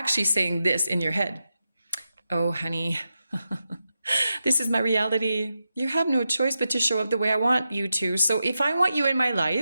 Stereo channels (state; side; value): inverted; both; correlation -0.88